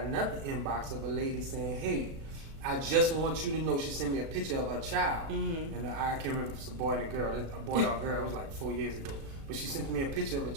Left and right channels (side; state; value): left; late; 36 ms